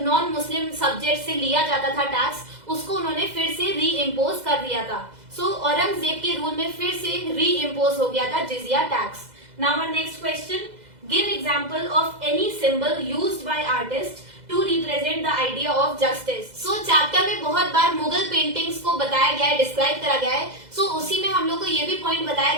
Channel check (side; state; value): left; late; 2.0 ms